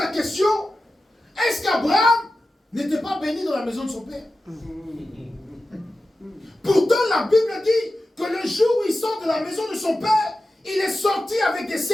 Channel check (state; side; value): normal; both; correlation 0.93